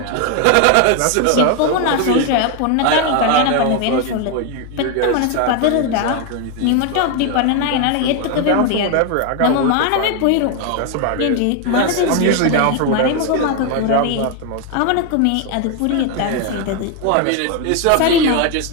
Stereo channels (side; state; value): both; different; correlation 0.01